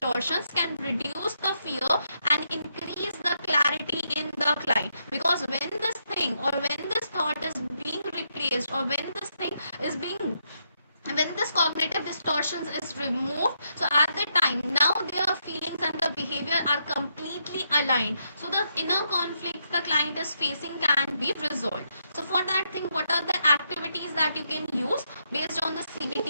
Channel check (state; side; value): inverted; both; correlation -0.79